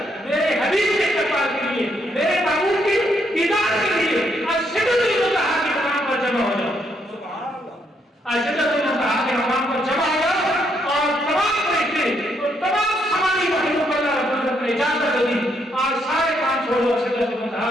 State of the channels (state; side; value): normal; both; correlation 0.74